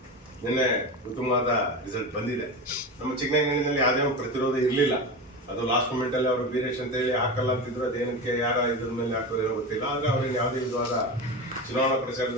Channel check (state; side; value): normal; both; correlation 0.24